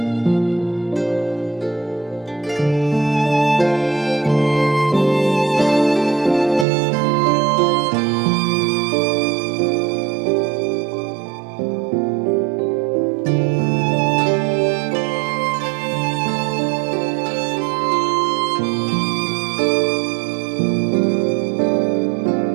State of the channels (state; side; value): drops out; left; at 6.7 s